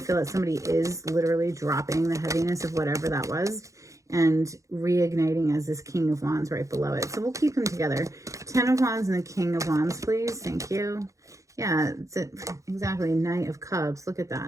that somebody is literally dropping the heaviness of whatever that was and reigniting as this King of Wands right below it. So we'll keep them together. Ten of Wands and the King of Wands, please. Thank you. Yeah, it's exactly Knight of Cups. Look at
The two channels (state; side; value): late; left; 0.15 ms